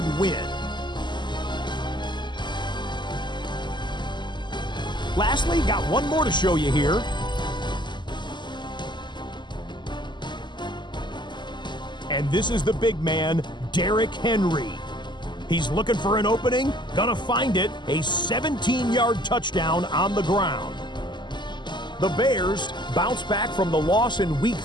win. Lastly, got one more to show you here. And this is the big man, Derrick Henry. He's looking for an opening, gonna find it, a 17-yard touchdown on the ground. The Bears bounce back from the loss in Week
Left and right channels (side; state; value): right; late; 0.22 ms